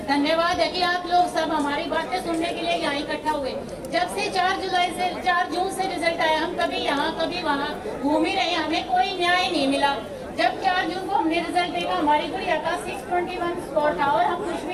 धन्यवाद है कि आप लोग सब हमारी बातें सुनने के लिए यहाँ इकट्ठा हुए। जब से 4 जून से रिजल्ट आया, हम कभी यहाँ कभी वहाँ घूम ही रहे, हमें कोई न्याय नहीं मिला। जब 4 जून को हमने रिजल्ट देखा, हमारी गुड़िया का 621 स्कोर था और हम खुश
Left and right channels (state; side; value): identical; both; correlation 1.00